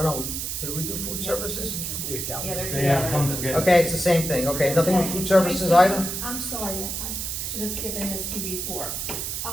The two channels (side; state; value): right; noise; hiss, 4 dB below the sound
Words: no, did we do food services? Yeah, there's They have come together. Okay, it's the same thing, okay, nothing with food services either? I'm sorry, I should have given this to you before.